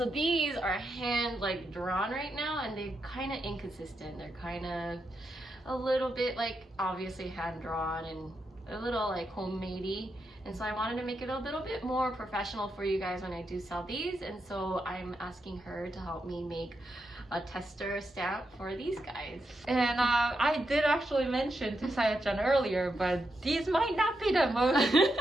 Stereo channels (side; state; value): both; normal; correlation 0.84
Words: these are hand like drawn right now, and they're kind of inconsistent. They're kind of a little bit like obviously hand drawn and a little like homemadey. And so I wanted to make it a little bit more professional for you guys when I do sell these. And so I'm asking her to help me make a tester stamp for these guys. And I did actually mention to Sayachan earlier, but these might not be the most